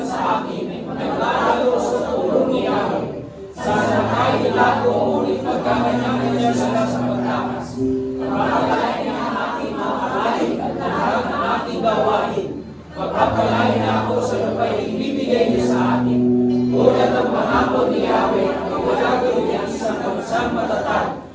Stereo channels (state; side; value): identical; both; correlation 1.00